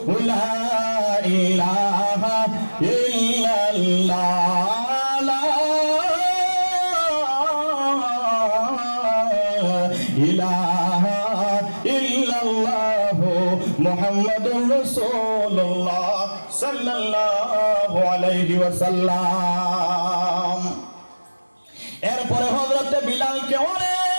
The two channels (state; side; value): inverted; both; correlation -1.00